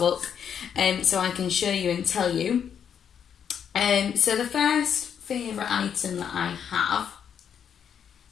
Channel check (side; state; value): right; quieter; 8.1 dB